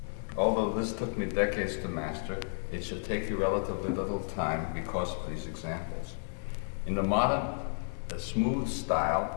Although this took me decades to master, it should take you relatively little time because of these examples. In the modern, smooth style,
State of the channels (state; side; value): silent; right; digital silence